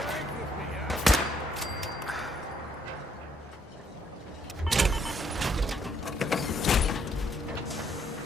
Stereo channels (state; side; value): normal; both; correlation 0.70